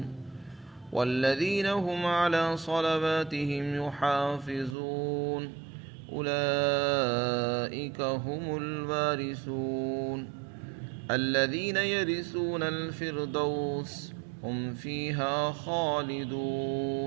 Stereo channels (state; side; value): drops out; left; at 4.8 s